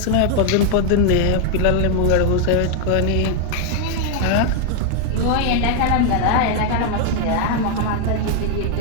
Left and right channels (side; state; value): both; different; correlation 0.01